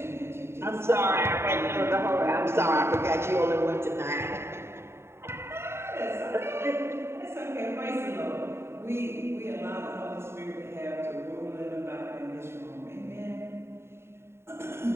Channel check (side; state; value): left; late; 0.12 ms